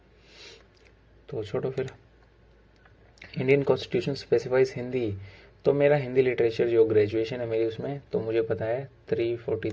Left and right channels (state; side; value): identical; both; correlation 1.00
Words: तो छोड़ो फिर। इंडियन कॉन्स्टिट्यूशन स्पेसिफाइज हिंदी, तो मेरा हिंदी लिटरेचर जो ग्रेजुएशन है मेरी, उसमें तो मुझे पता है